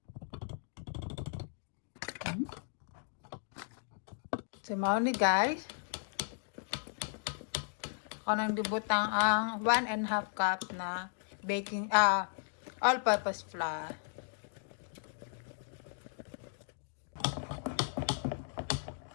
So mao ni guys. Kanang dibutang ang 1.5 cup na baking all-purpose flour.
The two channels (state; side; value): silent; right; digital silence